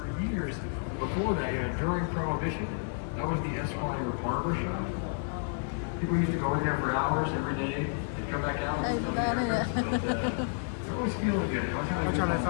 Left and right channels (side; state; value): right; silent; digital silence